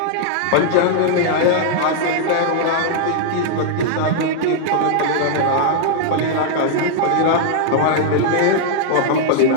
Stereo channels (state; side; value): different; both; correlation -0.01